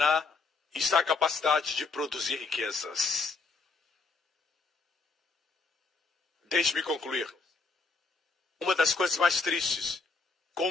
está a capacidade de produzir riquezas. Deixe-me concluir. Uma das coisas mais tristes,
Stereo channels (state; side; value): quieter; right; 4.2 dB